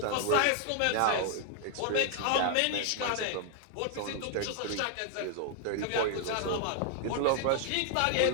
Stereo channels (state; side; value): different; both; correlation 0.00